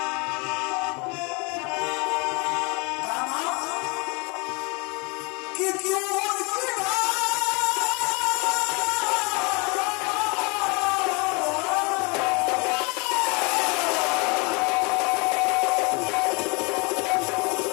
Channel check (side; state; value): right; quieter; 30.0 dB